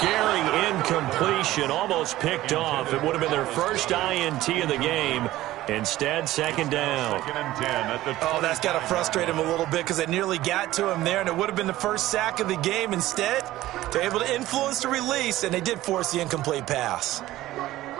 incompletion, almost picked off. It would have been their first INT of the game. Instead, 2nd down. 2nd and 10 at the Oh, that's got to frustrate him a little bit because they nearly got to him there, and it would have been the first sack of the game. Instead, they're able to influence the release, and they did force the incomplete pass.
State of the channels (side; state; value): left; quieter; 15.8 dB